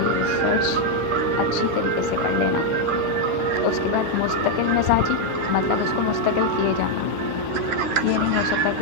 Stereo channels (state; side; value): late; left; 10 ms